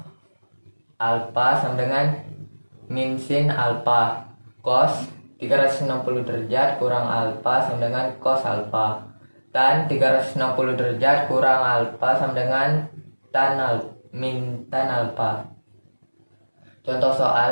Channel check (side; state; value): both; inverted; correlation -1.00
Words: alfa sama dengan min sin alfa. Cos 360 derajat kurang alfa sama dengan cos alfa. Tan 360 derajat kurang alfa sama dengan min tan alfa. Contoh